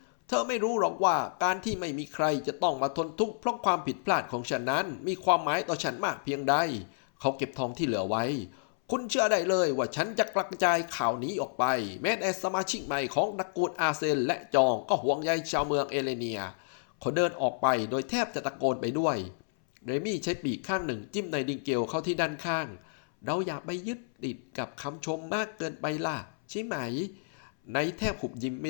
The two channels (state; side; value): silent; right; 58 dB below the other